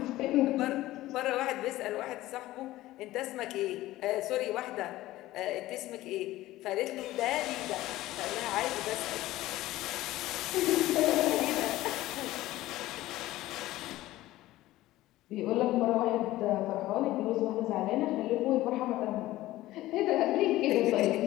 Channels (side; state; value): right; quieter; 16.4 dB